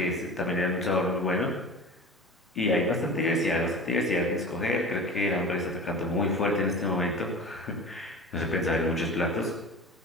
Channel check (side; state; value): both; normal; correlation 0.35